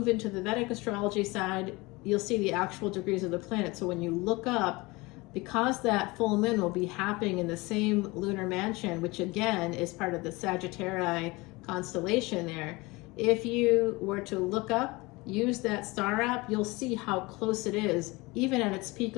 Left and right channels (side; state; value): right; quieter; 23.4 dB